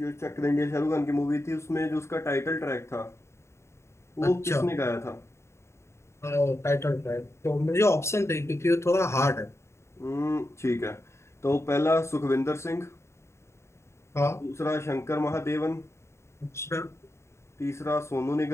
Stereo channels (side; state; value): right; late; 0.13 ms